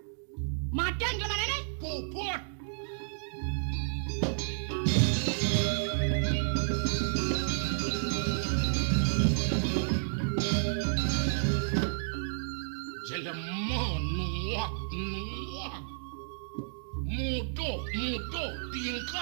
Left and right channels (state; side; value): silent; left; digital silence